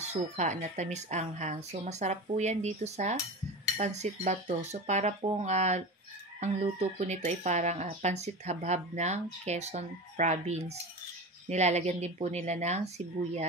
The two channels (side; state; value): both; normal; correlation 0.28